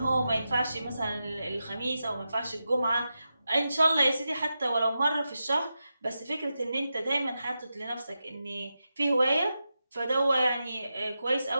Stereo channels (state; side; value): inverted; both; correlation -0.90